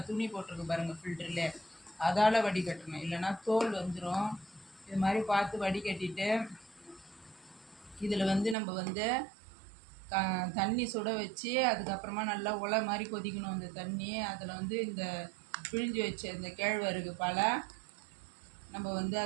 துணி போட்டிருக்கு பாருங்கள் ஃபில்டரில். அதால் வடிகட்டணும், இல்லைன்னா தோல் வந்துடும். இது மாதிரி பார்த்து வடிகட்டிட்டு இதில் நம்ம தண்ணி சுட வச்சு அதுக்கப்புறமா நல்லா உலை மாதிரி கொதிக்கணும் அந்த தண்ணி. அதில் இந்த பிழிஞ்சு வச்ச இந்த கேழ்வரகு பாலை நம்ம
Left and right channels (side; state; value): left; drops out; at 8.6 s